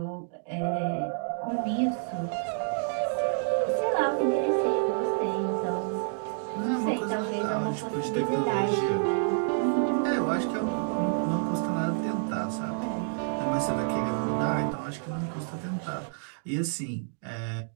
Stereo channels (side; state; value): left; silent; digital silence